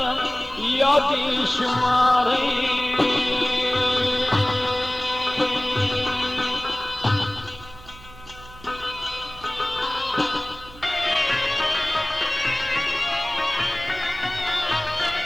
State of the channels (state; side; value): noise; right; hum, 20 dB below the sound